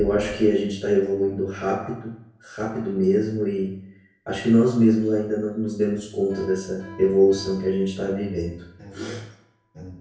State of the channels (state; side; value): identical; both; correlation 1.00